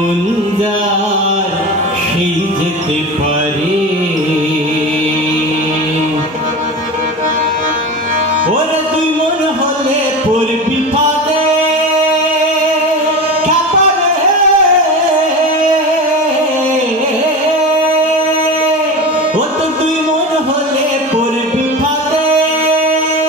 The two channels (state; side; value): normal; both; correlation 0.27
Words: যার সেই যেতে পারে ওরে তুই মন হলে পড়বি ফাঁদে ও তো তুই মন হলে পড়বি ফাঁদে